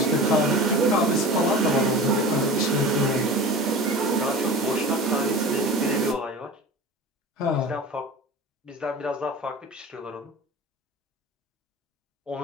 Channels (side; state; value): both; normal; correlation 0.35